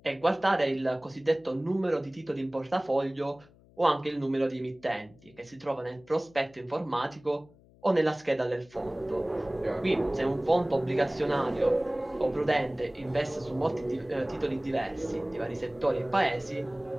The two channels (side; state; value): left; noise; hum, 27 dB below the sound